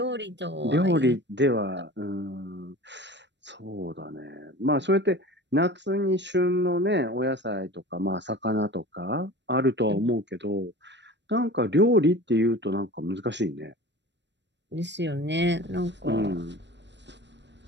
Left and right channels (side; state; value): left; late; 0.52 ms